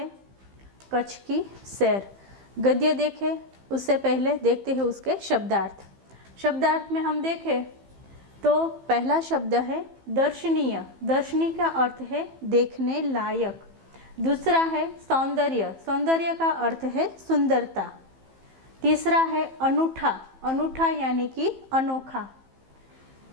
कच्छ की सैर। गद्य देखें उससे पहले देखते हैं उसके शब्दार्थ। शब्दार्थ में हम देखें तो पहला शब्द है दर्शनीय। दर्शनीय का अर्थ है देखने लायक। दूसरा है सौंदर्य। सौंदर्य का अर्थ है सुंदरता। तीसरा है अनूठा। अनूठा यानी कि अनोखा।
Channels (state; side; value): late; left; 15 ms